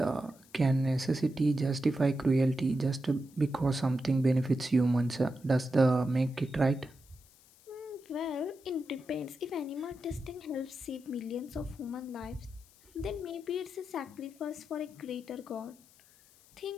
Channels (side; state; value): left; noise; hiss, 27 dB below the sound